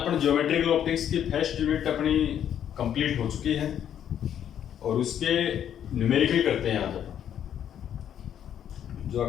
geometrical optics की first unit अपनी कंप्लीट हो चुकी है और उसके न्यूमेरिकल करते हैं आज अपन, जो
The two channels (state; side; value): quieter; right; 9.7 dB